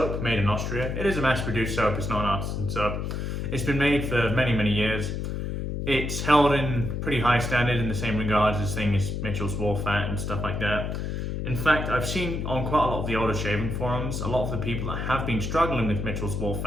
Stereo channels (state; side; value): noise; left; hum, 3 dB below the sound